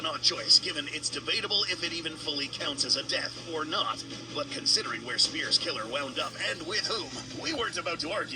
odd choice, given it's debatable if it even fully counts as a death or not. But considering where Spear's killer wound up and with whom, we weren't about to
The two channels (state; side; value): identical; both; correlation 1.00